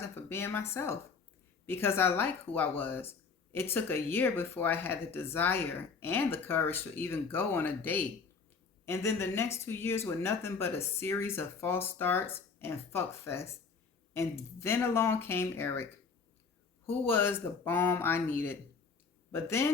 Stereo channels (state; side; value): quieter; right; 5.2 dB